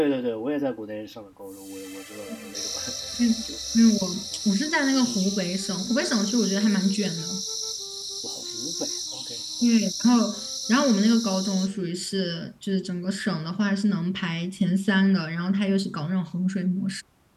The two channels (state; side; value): identical; both; correlation 1.00